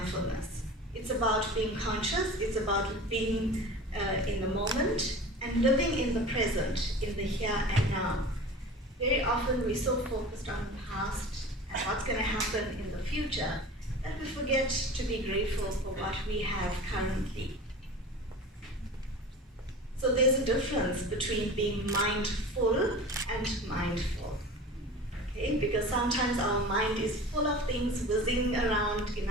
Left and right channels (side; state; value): both; normal; correlation 0.36